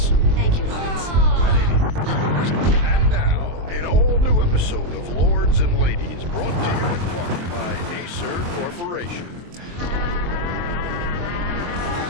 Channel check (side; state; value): left; late; 23 ms